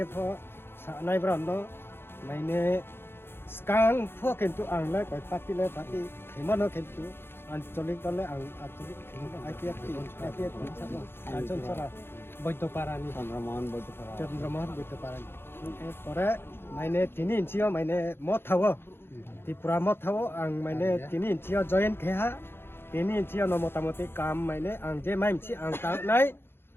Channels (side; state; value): right; late; 0.11 ms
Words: pho sa nai brando maine skang pho kentu ang la koi pati khimano kentu ancholik tole ang ancholik khimano apiat sabo anchon sara boito parani Chandramohan boito parani pore maine tini inchio maine mothawo Tripura mothawo ang maine tini inchio join kheha ini cia no motamoti kam maine ang je maim ci ang tang nai